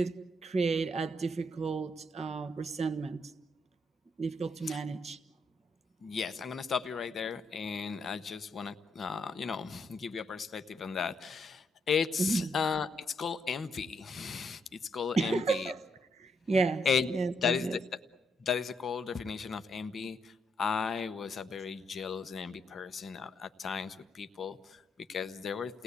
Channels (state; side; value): normal; both; correlation 0.76